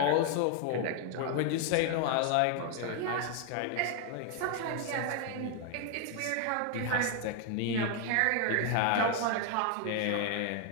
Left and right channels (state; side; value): different; both; correlation 0.00